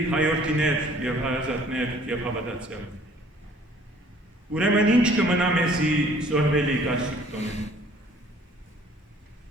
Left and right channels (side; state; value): both; normal; correlation 0.55